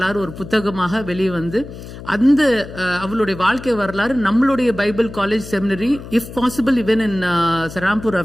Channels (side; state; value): left; noise; hum, 13 dB below the sound